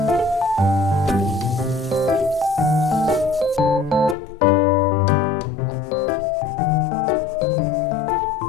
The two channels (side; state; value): right; drops out; at 4.2 s